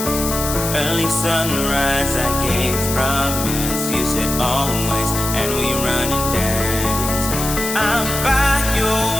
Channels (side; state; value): left; noise; hiss, 4 dB below the sound